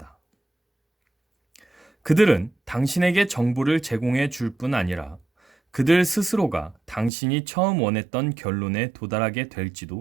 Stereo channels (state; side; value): drops out; left; at 7.1 s